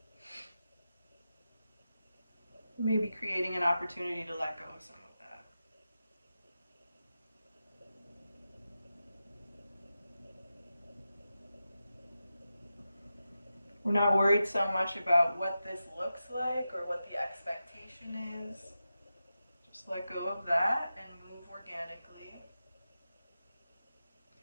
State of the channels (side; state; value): both; inverted; correlation -0.91